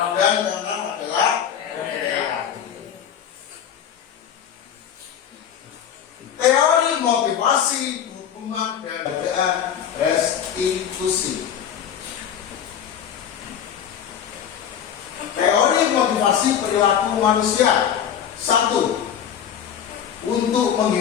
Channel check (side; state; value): right; quieter; 8.9 dB